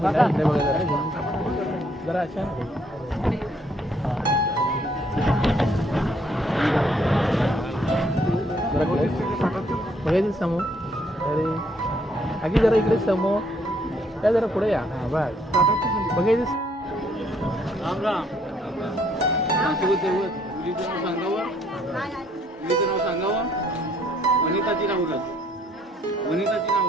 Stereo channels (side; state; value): both; normal; correlation 0.67